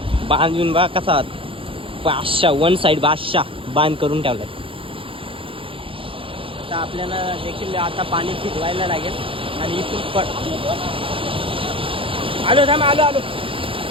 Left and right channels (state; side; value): late; left; 0.26 ms